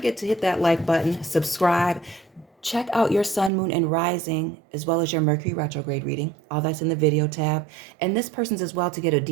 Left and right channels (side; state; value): left; drops out; at 3.5 s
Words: to hit that like button, subscribe. Check out your sun, moon, and rising, as well as your Mercury retrograde reading. All that's in the video tab. And this person's as well to get a